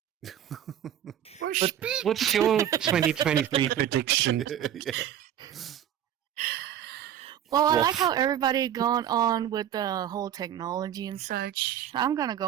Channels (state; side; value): quieter; left; 10.5 dB